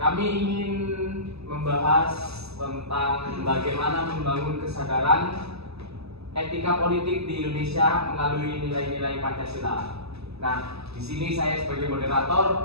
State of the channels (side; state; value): left; late; 0.79 ms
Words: ingin membahas tentang bagaimana membangun kesadaran etika politik di Indonesia melalui nilai-nilai Pancasila. Nah, di sini saya sebagai